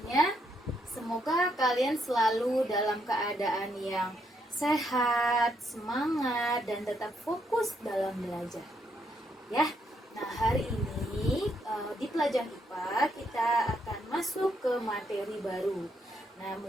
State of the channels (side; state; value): both; normal; correlation 0.75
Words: Semoga kalian selalu dalam keadaan yang sehat, semangat, dan tetap fokus dalam belajar. Ya. Nah, hari ini di pelajaran IPA kita akan masuk ke materi baru. Nah,